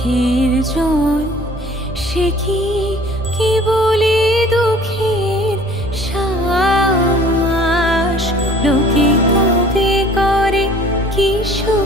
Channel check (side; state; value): both; normal; correlation 0.51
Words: জল, সে কি কেবলি দুঃখের শ্বাস। লোকে তবে করে কি